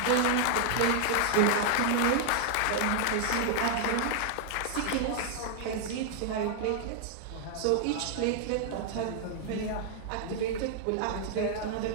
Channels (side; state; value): both; different; correlation -0.01